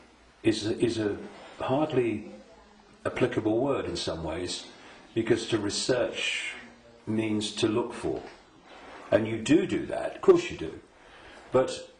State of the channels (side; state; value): both; identical; correlation 1.00